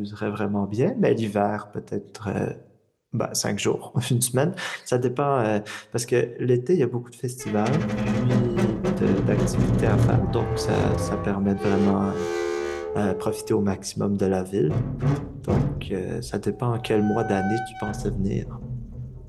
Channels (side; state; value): both; identical; correlation 1.00